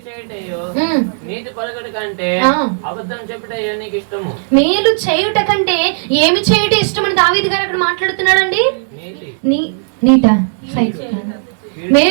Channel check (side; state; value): left; silent; digital silence